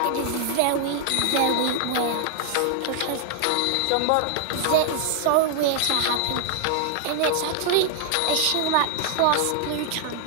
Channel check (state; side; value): different; both; correlation 0.00